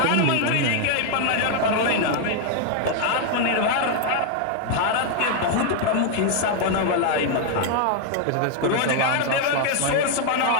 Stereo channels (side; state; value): both; different; correlation 0.00